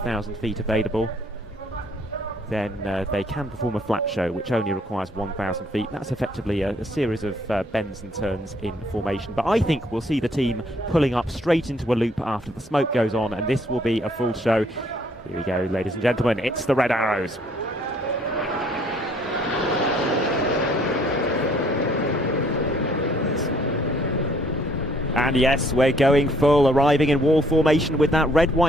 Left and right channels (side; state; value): both; normal; correlation 0.63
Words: feet available, then they can perform a flat show, which only requires 1,000 feet. That's effectively a series of bends and turns in formation. But I think we'll see the team pulling up straight into a loop after the smoke goes on, and this will be a full show. Here we go, ladies and gentlemen, it's the Red Arrows. And yes, we're going full, arriving in wall formation with that red,